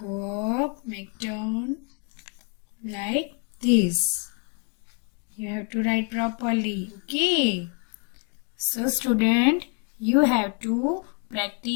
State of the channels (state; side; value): quieter; right; 35.4 dB